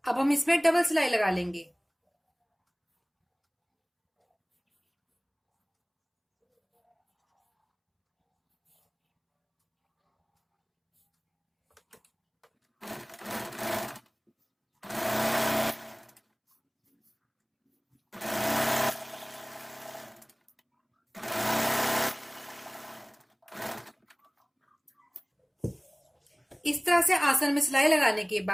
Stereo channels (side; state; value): both; identical; correlation 1.00